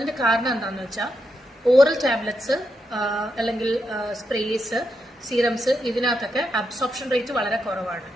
കാരണം എന്താണെന്ന് വെച്ചാൽ ഓറൽ ടാബ്ലറ്റ്സ് അല്ലെങ്കിൽ സ്പ്രേസ് സീറംസ് ഇതിനകത്തൊക്കെ അബ്സോർപ്ഷൻ റേറ്റ് വളരെ കുറവാണ്.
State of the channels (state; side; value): normal; both; correlation 0.84